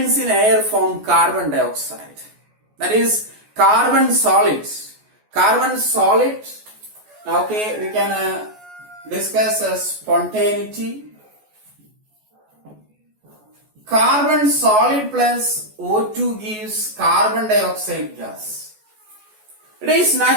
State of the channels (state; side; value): late; left; 14 ms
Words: in air from carbon dioxide. That is carbon solids. Okay, we can discuss spontaneity. Carbon solid plus O2 gives carbon dioxide gas. It is